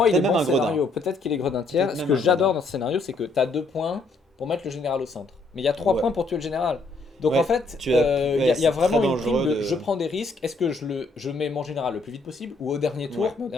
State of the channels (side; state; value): right; quieter; 3.2 dB